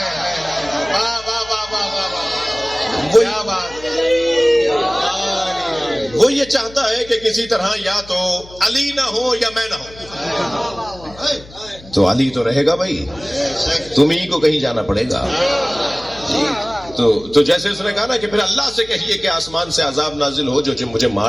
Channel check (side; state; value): left; noise; hum, 20 dB below the sound